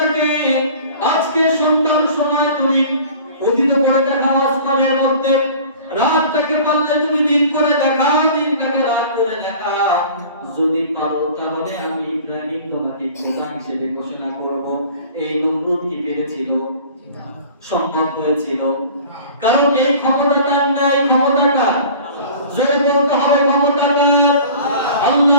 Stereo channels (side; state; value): both; inverted; correlation -0.44